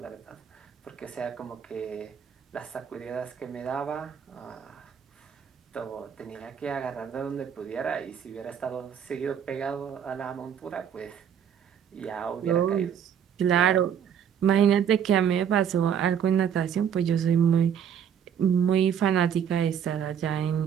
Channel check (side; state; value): left; quieter; 8.4 dB